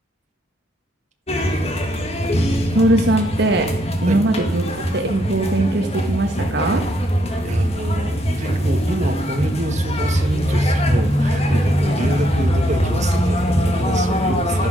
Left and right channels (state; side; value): normal; both; correlation 0.74